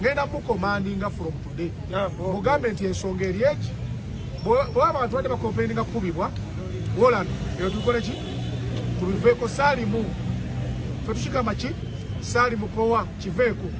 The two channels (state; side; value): identical; both; correlation 1.00